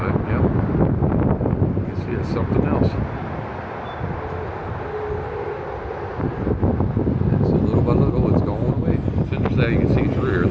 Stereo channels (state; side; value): identical; both; correlation 1.00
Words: yep. You can see it's something else. And so little by little it's going away. It's interesting. You can see through here